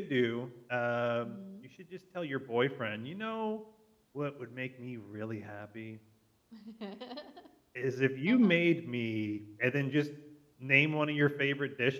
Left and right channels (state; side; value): identical; both; correlation 1.00